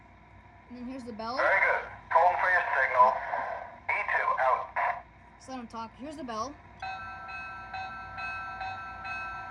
And then here's the bell. Very good. Holding for your signal. E2, out. So let him talk. Here's the bell.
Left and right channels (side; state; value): both; identical; correlation 1.00